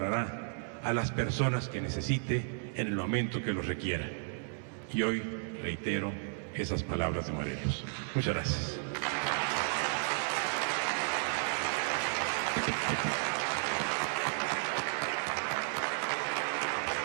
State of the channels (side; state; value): left; silent; 55 dB below the other